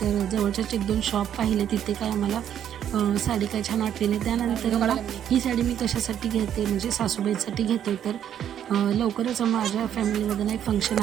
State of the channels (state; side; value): quieter; left; 9.8 dB